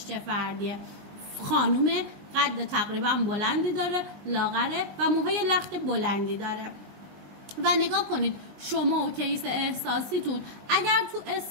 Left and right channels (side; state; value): left; late; 19 ms